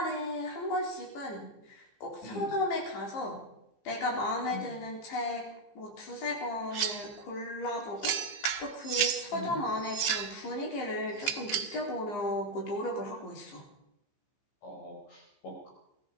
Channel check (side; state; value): right; late; 15 ms